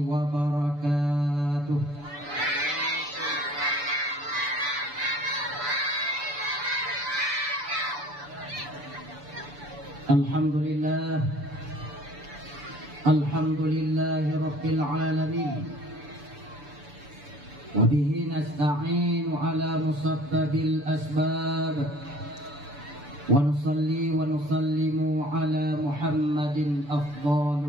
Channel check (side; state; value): left; late; 6.9 ms